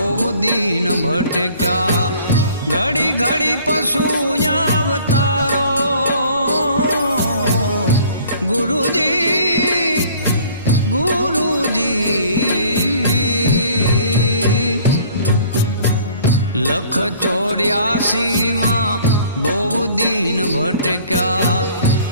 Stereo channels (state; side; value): inverted; both; correlation -0.53